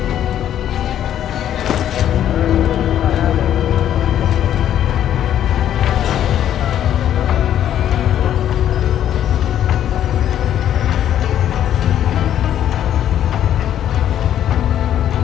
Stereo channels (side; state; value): right; quieter; 10.8 dB